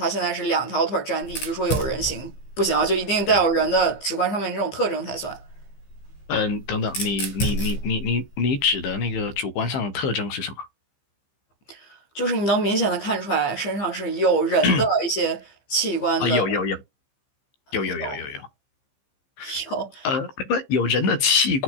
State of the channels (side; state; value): right; late; 15 ms